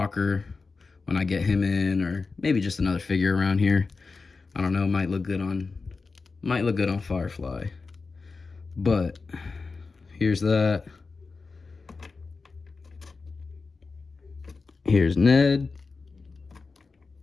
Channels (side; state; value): right; quieter; 4.3 dB